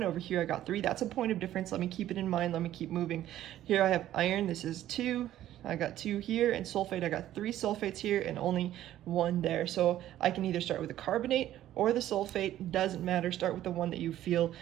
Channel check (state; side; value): quieter; left; 12.9 dB